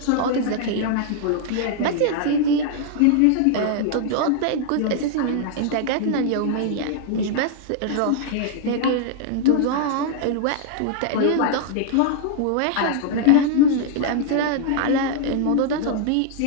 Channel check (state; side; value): different; both; correlation -0.01